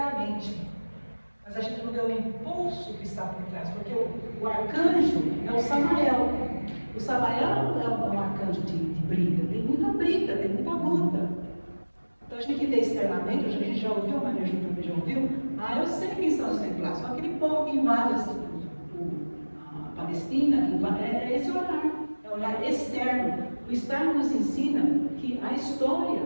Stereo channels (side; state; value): both; inverted; correlation -1.00